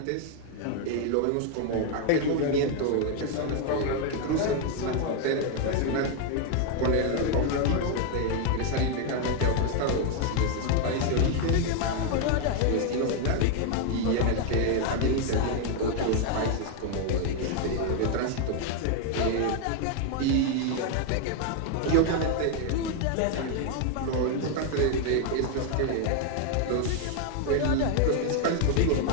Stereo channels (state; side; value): different; both; correlation 0.00